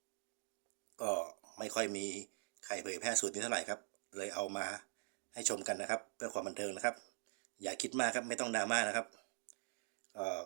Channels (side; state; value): left; silent; digital silence